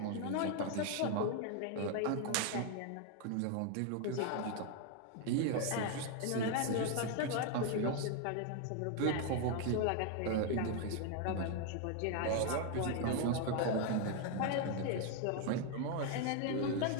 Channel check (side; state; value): both; different; correlation 0.01